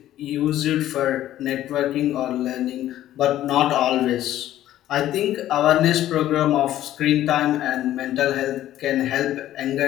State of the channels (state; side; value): quieter; right; 13.1 dB